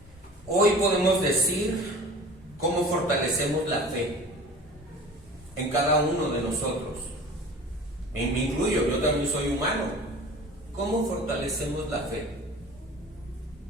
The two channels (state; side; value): normal; both; correlation 0.41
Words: Hoy podemos decir cómo fortalecemos la fe en cada uno de nosotros. Me incluyo, yo también soy humano. ¿Cómo fortalecemos la fe?